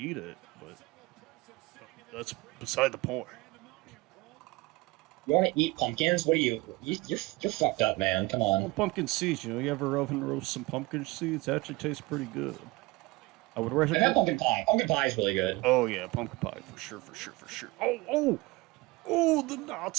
it, but that's beside the point. You want to eat pumpkins? What are you? You're fucked up, man. Come on. Well, pumpkin seeds. You ever oven roast some pumpkin seeds? It actually tastes pretty good. I would recommend. I have pumpkin pie. Pumpkin pie is really good. Oh yeah, pumpkin pie for sure. Oh, the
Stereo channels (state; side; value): quieter; left; 22.1 dB